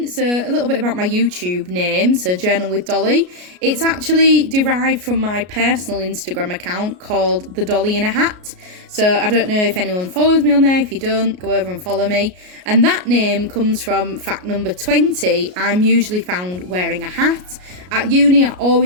so a little bit about my YouTube name, so Journal with Dolly. It's actually derived from my personal Instagram account called The Dolly in a Hat. So I don't know if anyone follows me on there. If you don't, go over and follow me. And that name comes from fact number 20. I'm usually found wearing a hat. At uni, I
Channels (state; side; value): late; left; 33 ms